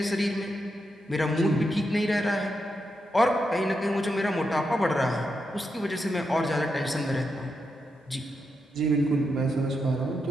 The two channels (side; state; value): both; normal; correlation 0.85